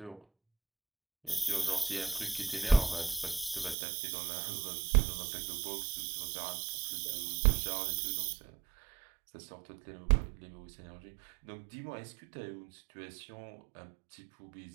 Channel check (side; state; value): left; drops out; at 3.8 s